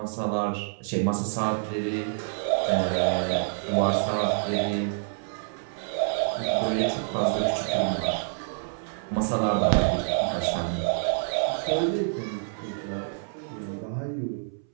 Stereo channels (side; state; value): left; silent; 60 dB below the other